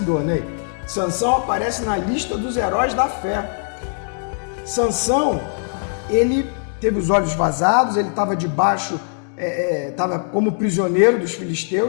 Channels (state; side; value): silent; right; digital silence